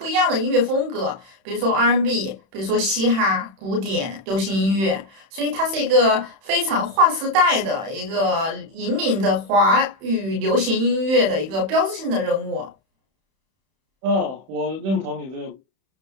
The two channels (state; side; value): late; left; 31 ms